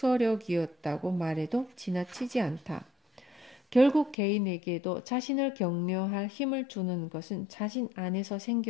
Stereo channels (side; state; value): right; drops out; at 4.2 s